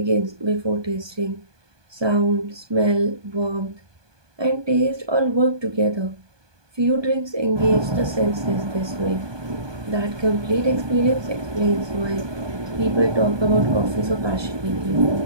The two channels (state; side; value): late; left; 1.2 ms